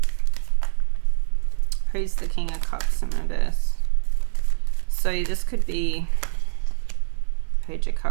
Who's the King of Cups in reverse? So this could be Page of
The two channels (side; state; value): left; silent; 55 dB below the other